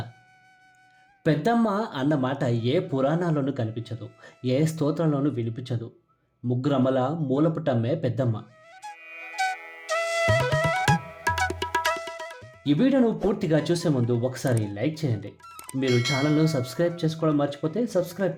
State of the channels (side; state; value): both; identical; correlation 1.00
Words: పెద్దమ్మ అన్న మాట ఏ పురాణాల్లోనూ కనిపించదు, ఏ స్తోత్రంలోనూ వినిపించదు. ముగ్గురమ్మల మూలపుటమ్మే పెద్దమ్మ. ఈ వీడియోను పూర్తిగా చూసే ముందు ఒకసారి లైక్ చేయండి. మీరు ఛానల్ను సబ్స్క్రైబ్ చేసుకోవడం మర్చిపోతే సబ్స్క్రైబ్